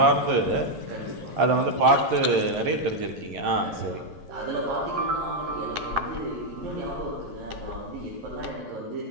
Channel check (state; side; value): late; left; 11 ms